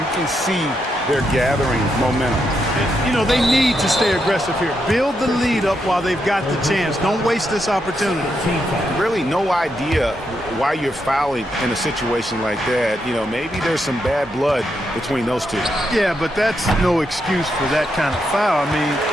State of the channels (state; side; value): normal; both; correlation 0.82